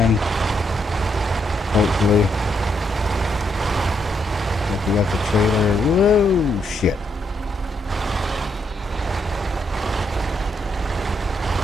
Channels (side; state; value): both; normal; correlation 0.77